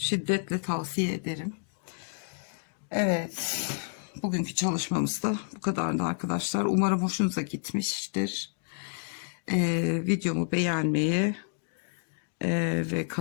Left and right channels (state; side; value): silent; right; digital silence